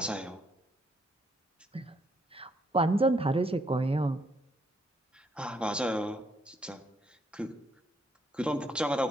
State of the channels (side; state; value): both; normal; correlation 0.72